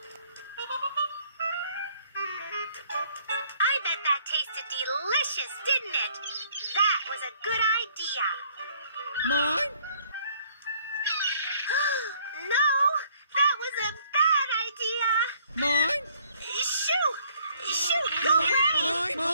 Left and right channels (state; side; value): inverted; both; correlation -0.62